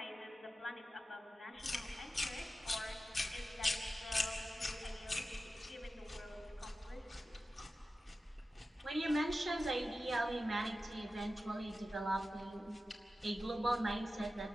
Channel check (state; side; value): normal; both; correlation 0.93